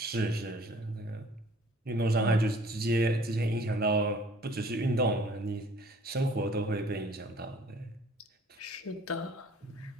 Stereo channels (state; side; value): normal; both; correlation 0.53